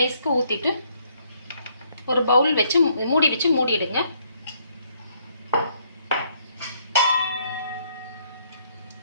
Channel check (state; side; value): inverted; both; correlation -0.69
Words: ஊற்றிட்டு ஒரு பவுல் வச்சு மூடி வச்சு மூடிடுங்க.